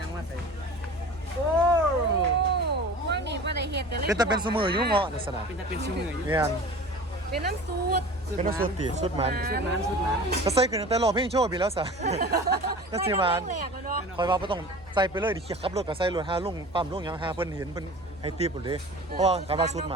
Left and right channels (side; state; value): right; noise; hum, 23 dB below the sound